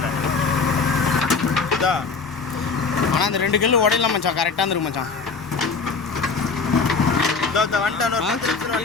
இதான். ஆனால் அந்த 2 கல் உடையலாம் மச்சான் கரெக்டாக இருந்துருக்கு மச்சான்.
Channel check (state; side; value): quieter; right; 4.7 dB